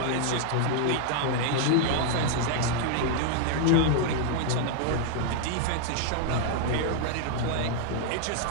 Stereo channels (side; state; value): both; different; correlation 0.00